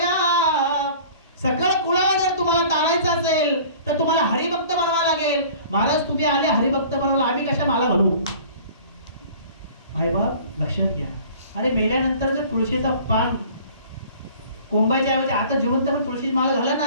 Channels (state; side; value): inverted; both; correlation -0.47